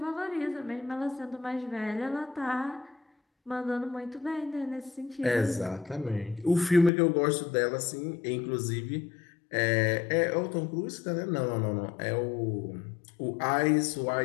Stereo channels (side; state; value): right; drops out; at 6.9 s